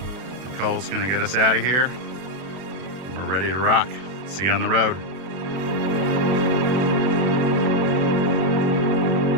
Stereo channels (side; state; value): left; late; 32 ms